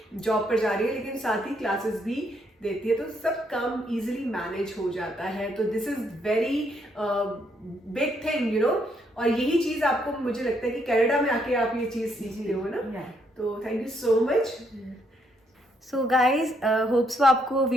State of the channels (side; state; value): both; normal; correlation 0.73